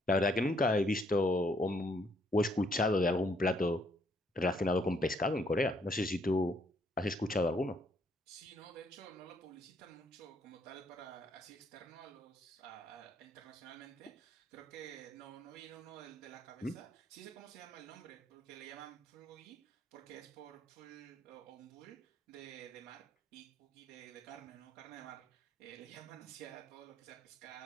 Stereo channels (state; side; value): normal; both; correlation 0.69